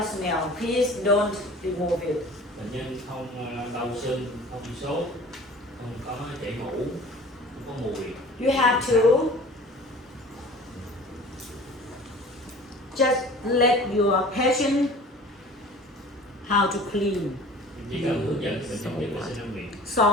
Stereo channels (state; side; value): normal; both; correlation 0.44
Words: smell. Please don't remove it. Bệnh nhân không đau sưng, không sốt, không có chảy mũ, không có mùi. You have to just let your patient how to clean. Chỉ cần hướng dẫn cho bệnh nhân biết vệ sinh răng miệng.